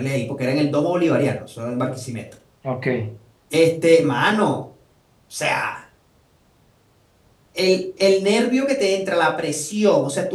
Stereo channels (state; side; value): identical; both; correlation 1.00